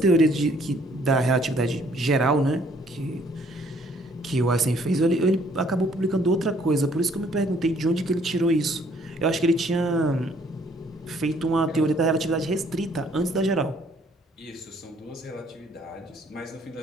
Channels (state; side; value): normal; both; correlation 0.63